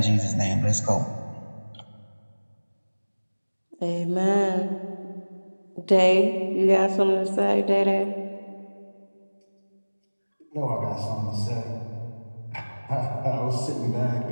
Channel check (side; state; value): both; inverted; correlation -1.00